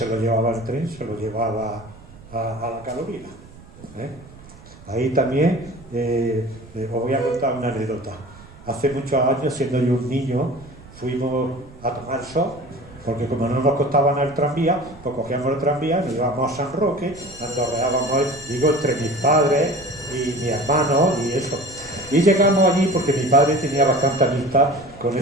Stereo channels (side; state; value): right; noise; rumble, 21 dB below the sound